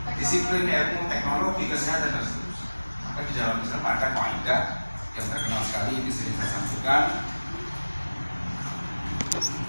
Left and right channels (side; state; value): both; inverted; correlation -1.00